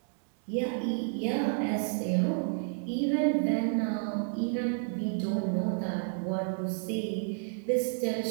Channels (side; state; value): left; silent; digital silence